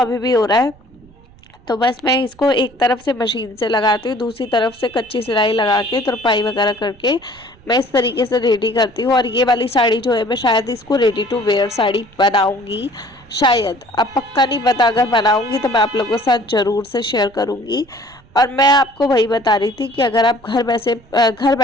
भी हो रहा है। तो बस मैं इसको एक तरफ से मशीन से लगाती हूँ, दूसरी तरफ से कच्ची सिलाई लगा के तुरपाई वगैरह करके मैं इस तरीके से रेडी करती हूँ। और ये वाली साड़ी जो है मैं शायद इसको रेडी टू वेयर साड़ी बनाऊँगी, शायद, अब पक्का नहीं पता। अगर बनाऊँगी तो मैं आप लोगों के साथ ज़रूर से शेयर करूँगी। और मैं आपको वही बता रही थी कि अगर आप घर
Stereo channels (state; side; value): noise; right; rumble, 26 dB below the sound